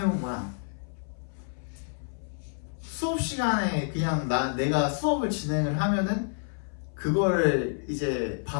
거야. 수업 시간에 그냥 내가 수업을 진행을 하면은 그거를 이제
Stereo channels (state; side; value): silent; right; 59 dB below the other